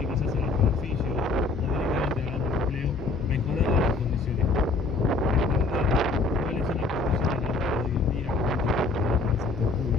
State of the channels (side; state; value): right; quieter; 3.8 dB